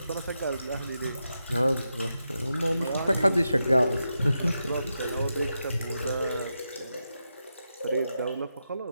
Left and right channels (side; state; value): both; inverted; correlation -0.87